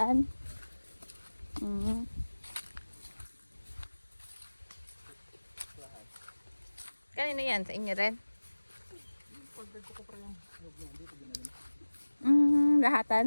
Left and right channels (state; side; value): inverted; both; correlation -1.00